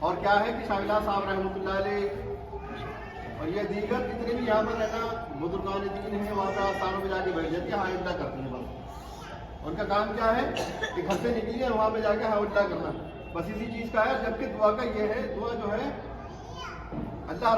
کیا ہے کہ شاہ صاحب رحمۃ اللہ علیہ اور یہ دیگر جتنے بھی یہاں پر رہنا بزرگان دین ہیں وہاں پر آستانوں میں جا کے بیٹھ جاتی ہیں، ہاں اللہ کرتی ہیں. بس ان کا کام کیا ہے کہ گھر سے نکلی ہے وہاں پہ جا کے ہاں اللہ کرنا، بس اسی چیز کا ہے. جبکہ دعا کا یہ ہے، دعا جو ہے اللہ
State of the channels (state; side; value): identical; both; correlation 1.00